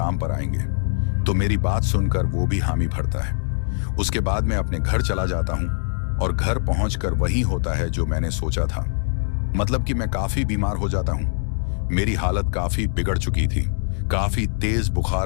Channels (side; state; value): right; silent; digital silence